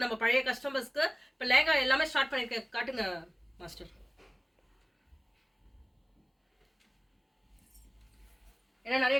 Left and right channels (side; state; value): both; identical; correlation 1.00